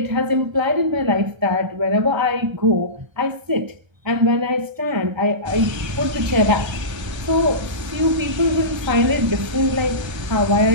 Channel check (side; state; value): left; late; 1.3 ms